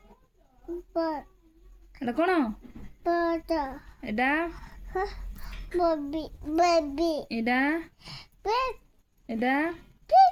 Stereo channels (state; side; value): identical; both; correlation 1.00